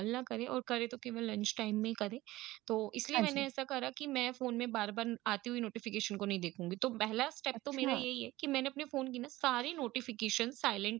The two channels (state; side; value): quieter; left; 17.8 dB